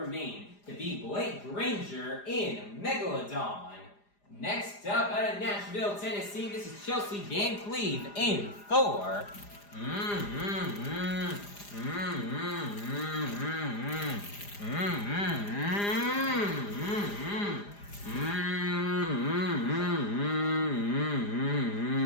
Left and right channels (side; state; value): right; late; 4.9 ms